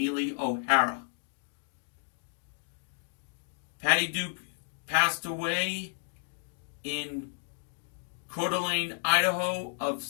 O'Hara. Patty Duke passed away in Coeur d'Alene, Idaho, of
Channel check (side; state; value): right; silent; 56 dB below the other